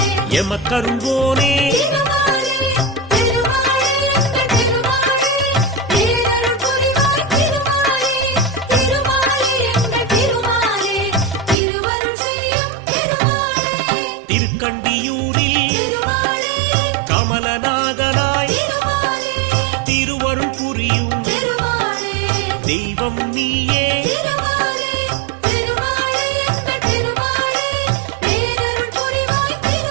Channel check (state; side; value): drops out; left; at 11.6 s